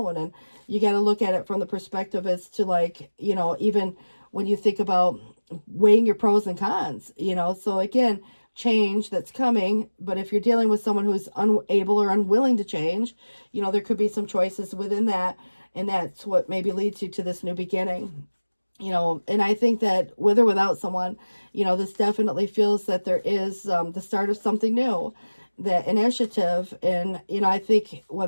And you got to look at it from the perspective as to, like, even when you think about weighing your pros and cons, so again, change that's coming. But if you're dealing with someone who's unable or unwilling to change, there could be some choices within that, and that's what maybe leads you to this new beginning. And I think that with or without someone, this definitely feels that there is the start of something new, that initiative. And, I think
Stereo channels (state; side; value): inverted; both; correlation -1.00